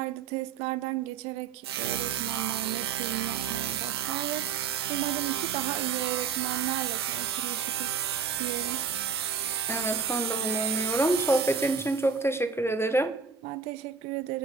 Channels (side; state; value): left; quieter; 5.8 dB